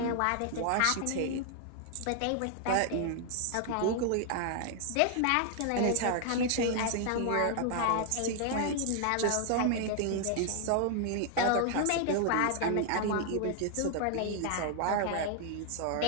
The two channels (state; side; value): different; both; correlation 0.00